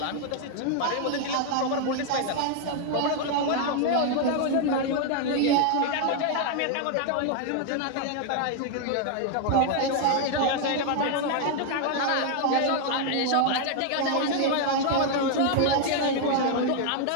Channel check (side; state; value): both; different; correlation 0.00